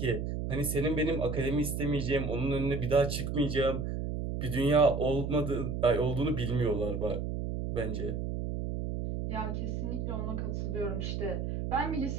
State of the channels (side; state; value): right; noise; hum, 2 dB below the sound